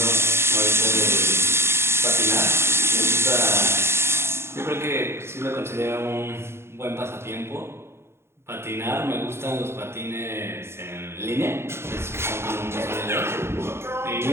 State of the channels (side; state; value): left; late; 0.12 ms